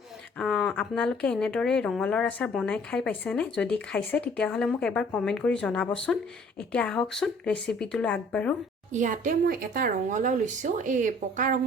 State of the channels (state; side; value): normal; both; correlation 0.56